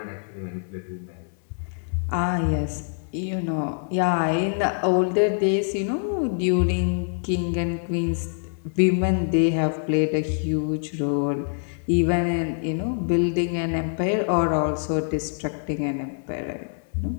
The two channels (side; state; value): right; silent; 62 dB below the other